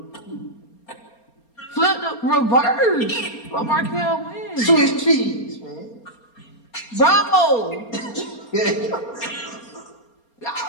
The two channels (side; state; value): right; late; 4.3 ms